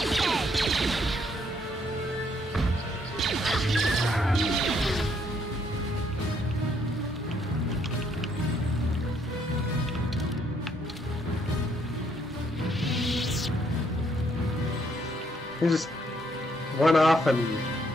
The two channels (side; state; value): both; normal; correlation 0.70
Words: He just went off and...